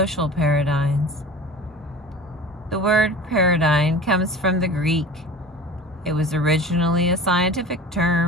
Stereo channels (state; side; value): normal; both; correlation 0.38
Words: paradigms. The word paradigm comes from the Greek. It was originally a scientific